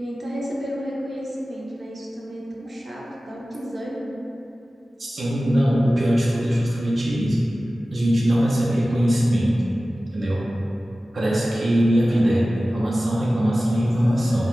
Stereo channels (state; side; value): normal; both; correlation 0.96